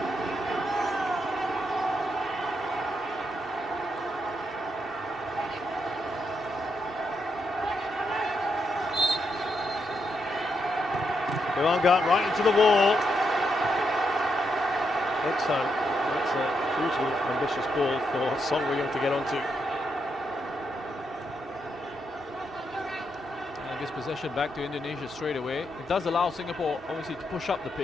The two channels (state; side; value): normal; both; correlation 0.81